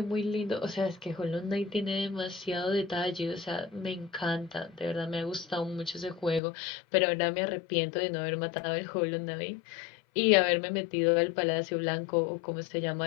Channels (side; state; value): right; drops out; at 6.4 s